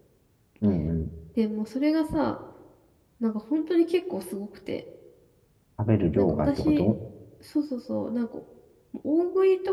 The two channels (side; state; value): both; identical; correlation 1.00